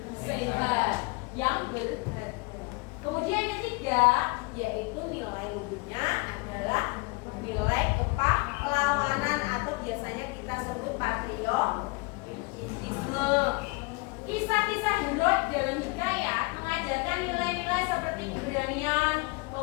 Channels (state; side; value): quieter; right; 27.4 dB